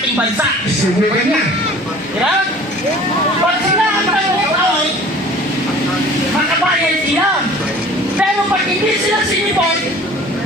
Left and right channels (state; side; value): normal; both; correlation 0.46